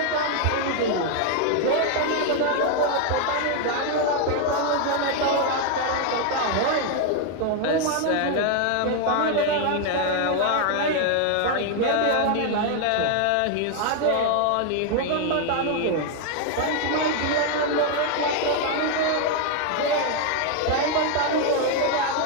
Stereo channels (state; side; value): different; both; correlation 0.00